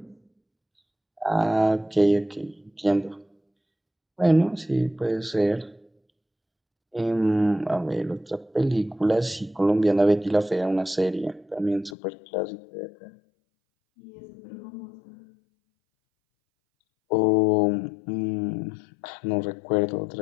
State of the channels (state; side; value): drops out; right; at 12.0 s